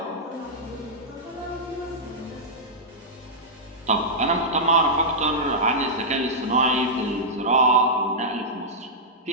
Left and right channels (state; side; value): normal; both; correlation -0.10